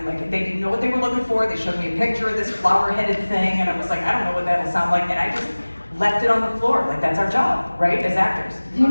like, they didn't know what they were looking for. They showed me a picture of this flower-headed thing, and I was like, I don't know what that'll sound like, and I just left it on the floor. Like, that's our job, right, as actors. Do you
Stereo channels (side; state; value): both; inverted; correlation -1.00